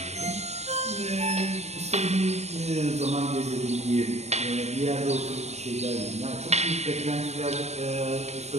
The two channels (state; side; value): late; left; 0.32 ms